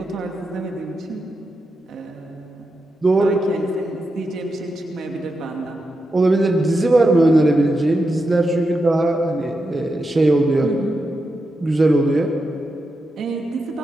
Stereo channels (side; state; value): both; normal; correlation 0.87